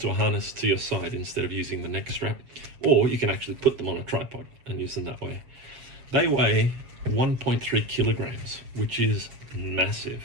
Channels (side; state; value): left; late; 7.5 ms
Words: a harness to your side instead of using the neck strap, or you can actually put them on a tripod and use them that way. They weigh 1.3 kilograms, which is massive.